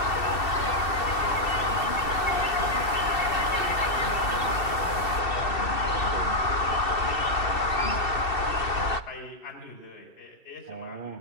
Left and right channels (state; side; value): late; right; 2.7 ms